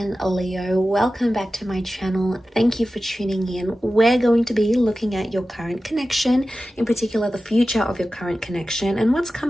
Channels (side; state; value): both; normal; correlation 0.94